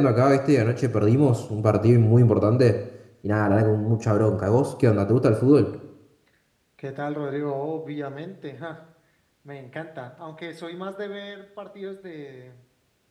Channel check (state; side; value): identical; both; correlation 1.00